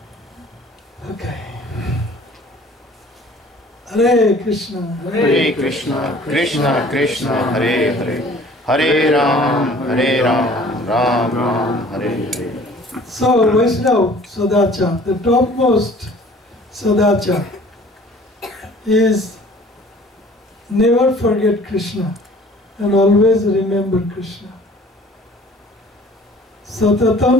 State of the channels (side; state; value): both; normal; correlation 0.51